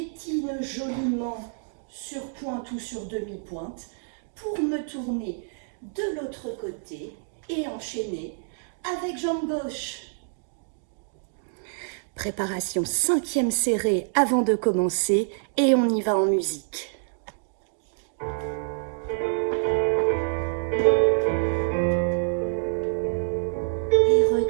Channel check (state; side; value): silent; left; digital silence